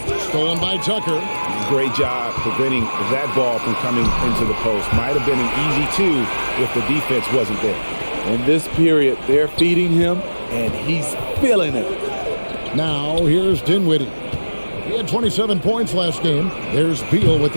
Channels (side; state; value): both; inverted; correlation -1.00